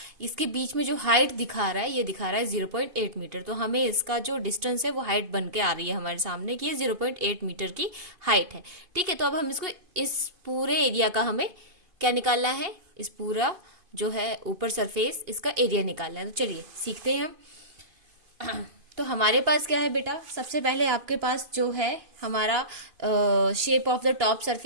इसके बीच में जो हाइट दिखा रहा है, ये दिखा रहा है 0.8 मीटर। तो हमें इसका जो डिस्टेंस है वो हाइट बन के आ रही है हमारे सामने कि ये 0.8 मीटर की हाइट है, ठीक है। तो अब हम इसको, इस पूरे एरिया का हमें क्या निकालना है, इस पूरा जो है ऊपर सरफेस, इसका एरिया निकालना है। तो चलिए सीखते हैं हम। तो हमारे पास क्या है बेटा, सबसे पहले आपके पास जो है हमारा shape of the top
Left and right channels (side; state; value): left; late; 2.5 ms